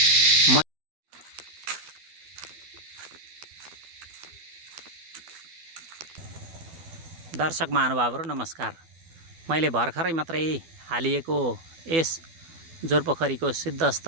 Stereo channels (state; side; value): late; left; 12 ms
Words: दर्शक महानुभावहरू नमस्कार। मैले भर्खरै मात्रै हालिएको यस जोरपोखरीको